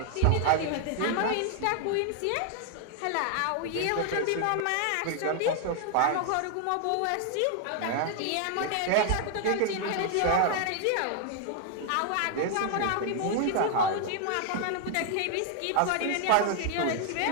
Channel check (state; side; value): different; both; correlation 0.00